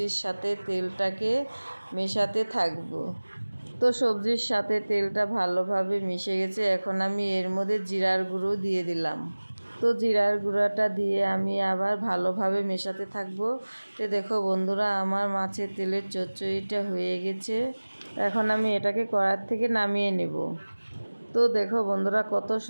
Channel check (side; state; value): both; inverted; correlation -1.00